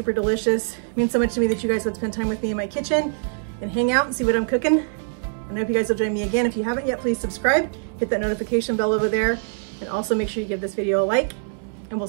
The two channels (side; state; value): left; silent; 63 dB below the other